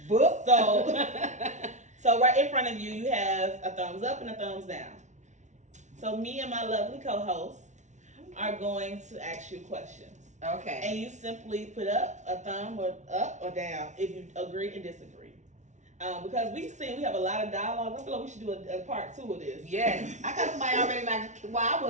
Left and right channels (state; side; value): late; left; 0.34 ms